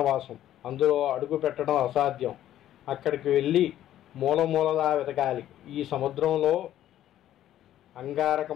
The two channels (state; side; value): quieter; right; 12.3 dB